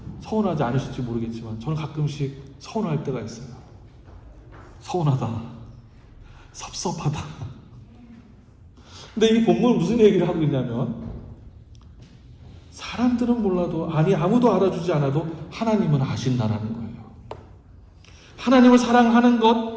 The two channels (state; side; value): identical; both; correlation 1.00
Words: 서운하지 않으실지 모르겠지만 저는 가끔씩 서운할 때가 있어요. 서운하다. 섭섭하다. 근데 이 본문은 무슨 얘기를 하고 있냐면 사람들은 몰라도 아무도 알아주지 않아도 하나님은 아신다라는 거예요. 하나님을 사랑하는